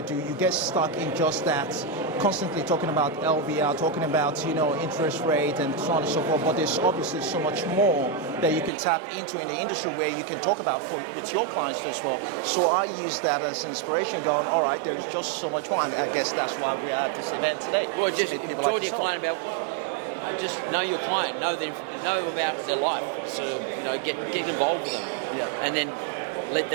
do, you get stuck in just that, constantly talking about LVR, talking about, interest rate and so on and so forth, but there's obviously so much more that you can tap into in the industry where you can talk about with your clients as well. So I use that as inspiration, going, all right, there's just so much more, and I guess that's why we are at this event today. Well, just talk to your client about, just know your client, know about their life, so, get involved with them, and then let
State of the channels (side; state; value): left; drops out; at 8.7 s